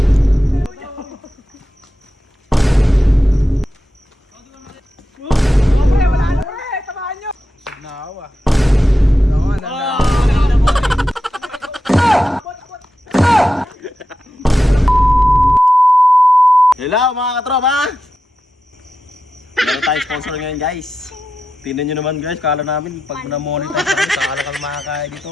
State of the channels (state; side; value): normal; both; correlation 0.90